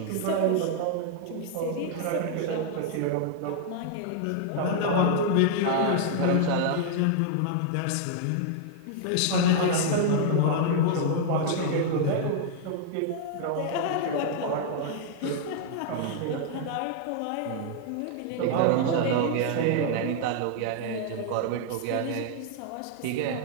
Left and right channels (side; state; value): both; different; correlation 0.00